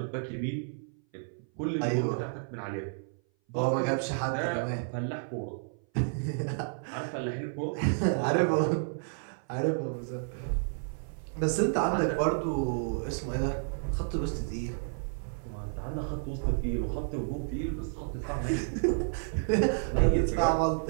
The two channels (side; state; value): left; silent; 57 dB below the other